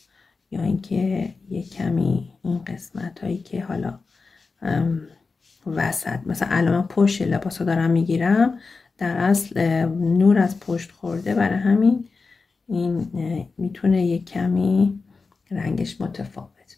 یا اینکه یه کمی این قسمت هایی که حالا وسط. مثلا الان من پشت لباسو دارم میگیرم، در اصل نور از پشت خورده، برای همین این میتونه یک کمی رنگش متفاوت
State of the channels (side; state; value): right; quieter; 4.3 dB